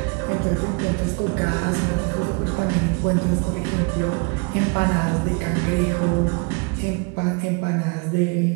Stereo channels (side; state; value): left; quieter; 32.3 dB